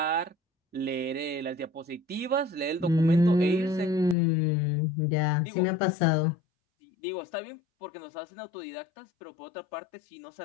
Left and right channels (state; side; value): drops out; right; at 4.2 s